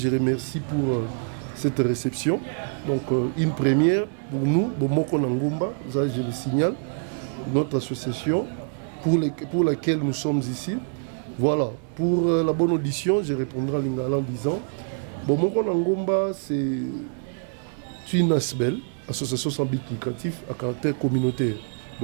remercie pour cette réception. Donc, une première pour nous, Bomoko na Ngomba, ça je le signale, notre association pour laquelle nous sommes ici. Voilà, pour la bonne audition, je répondrai en lingala en disant Bomoko na Ngomba, c'est une ASBEL, association sans but lucratif à caractère communautaire.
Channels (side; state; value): left; silent; 61 dB below the other